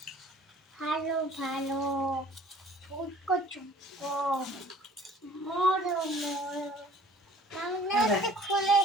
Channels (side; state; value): both; normal; correlation 0.52